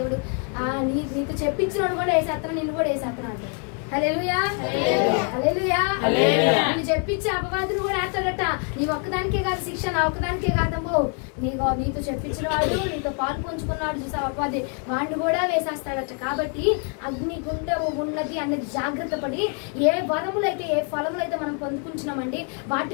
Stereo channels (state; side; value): quieter; right; 39.3 dB